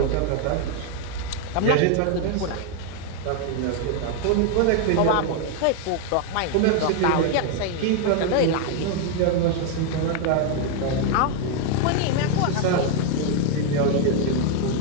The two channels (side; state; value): both; different; correlation 0.01